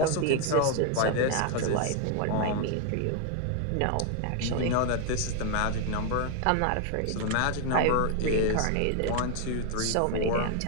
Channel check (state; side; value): different; both; correlation 0.00